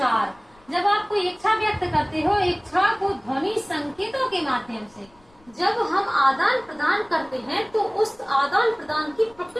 जब आप कोई इच्छा व्यक्त करते हो, इच्छा को ध्वनि संकेतों के माध्यम से जब हम आदान प्रदान करते हैं, तो उस आदान प्रदान की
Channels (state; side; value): noise; left; rumble, 30 dB below the sound